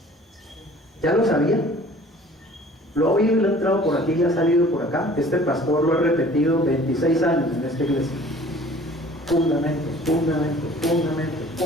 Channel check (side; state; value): both; normal; correlation 0.50